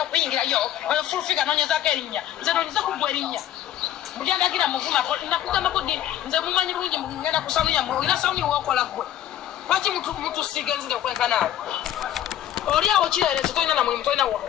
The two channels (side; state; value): right; quieter; 11.7 dB